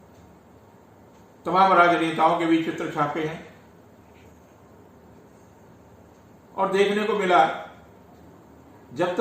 तमाम राजनेताओं के भी चित्र छापे हैं। और देखने को मिला जब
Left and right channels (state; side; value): identical; both; correlation 1.00